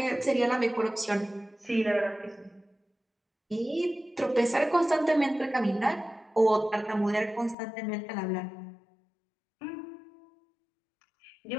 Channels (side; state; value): right; drops out; at 7.6 s